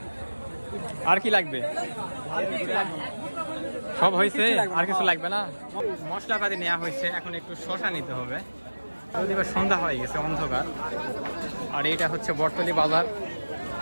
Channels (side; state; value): both; inverted; correlation -1.00